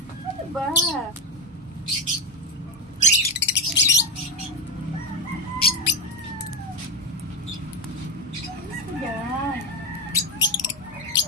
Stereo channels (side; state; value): both; normal; correlation 0.08